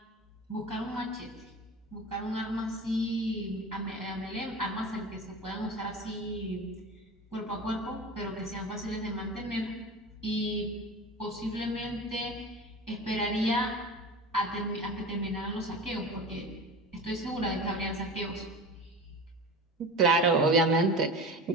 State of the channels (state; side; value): normal; both; correlation 0.33